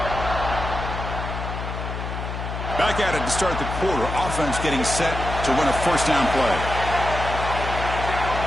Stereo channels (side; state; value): left; noise; hum, 5 dB below the sound